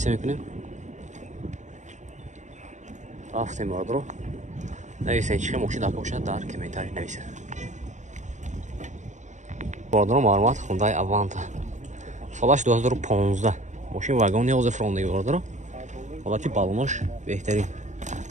мекунем. Рафтем бародор. Нависен чӣ мошин дака боша дар комментар нависе. Бародор маълумот Hyundai Avanta. Солаш 2015. Мошин вагон 11 фронтаги бародор. Ҳолати балонош беҳтарин.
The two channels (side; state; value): left; late; 0.35 ms